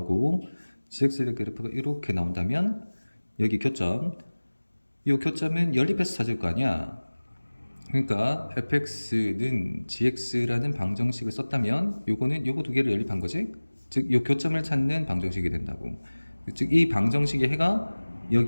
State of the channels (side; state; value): both; inverted; correlation -1.00